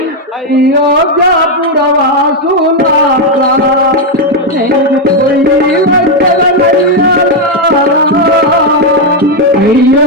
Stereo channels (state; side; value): normal; both; correlation 0.03